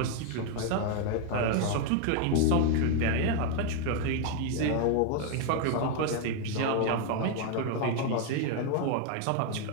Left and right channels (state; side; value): different; both; correlation 0.00